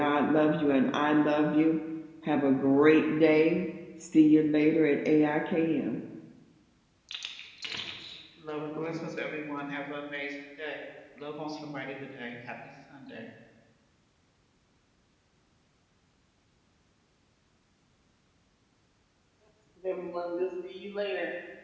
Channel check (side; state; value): both; identical; correlation 1.00